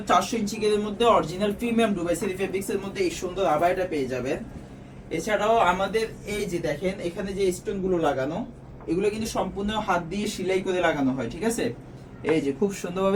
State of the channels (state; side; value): identical; both; correlation 1.00